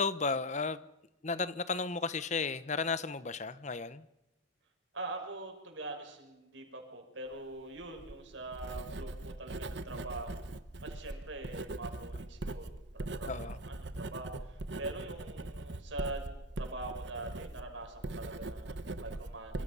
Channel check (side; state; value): both; normal; correlation 0.09